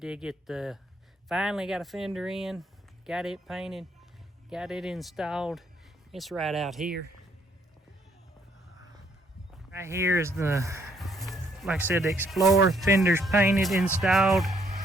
get finally got a fender in, got it painted, got it installed. It's right out here. Right here is like I said, the Explorer. Fender's painted, installed.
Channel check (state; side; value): normal; both; correlation 0.68